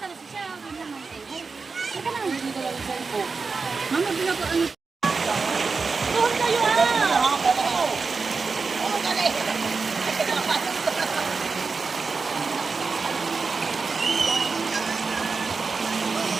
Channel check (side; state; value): left; quieter; 4.6 dB